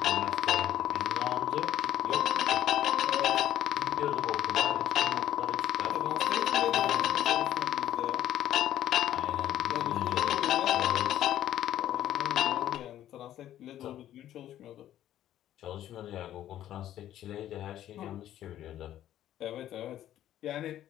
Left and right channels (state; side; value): quieter; right; 12.2 dB